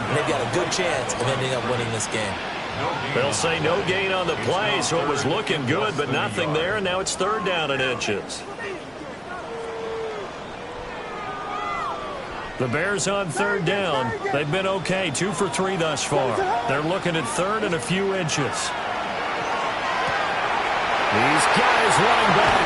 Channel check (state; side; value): identical; both; correlation 1.00